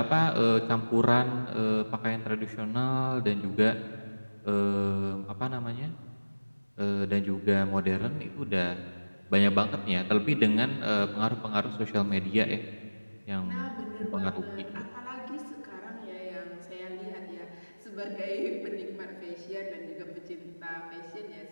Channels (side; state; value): both; inverted; correlation -1.00